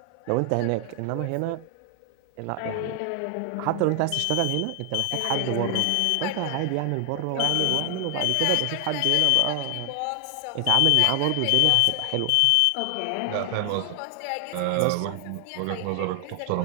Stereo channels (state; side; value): different; both; correlation 0.00